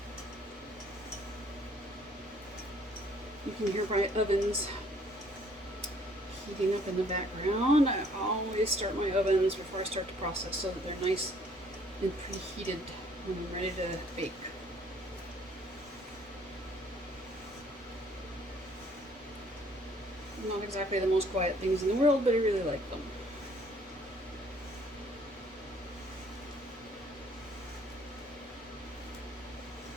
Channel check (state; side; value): normal; both; correlation 0.60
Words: You can hear my ovens heating up in the background. I always start my ovens before I start to process so that they're nice and preheated when I'm ready to bake. Not exactly the most quiet things in the world, but I really like them.